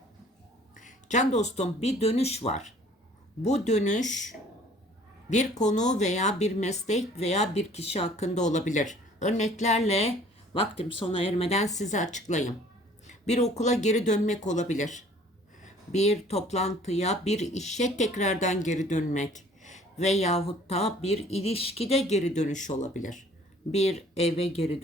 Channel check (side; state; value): both; normal; correlation 0.54